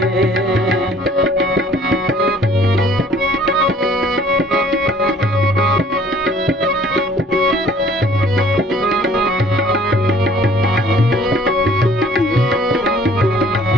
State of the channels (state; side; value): normal; both; correlation 0.55